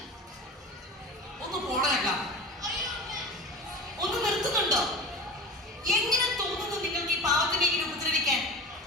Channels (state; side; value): normal; both; correlation 0.33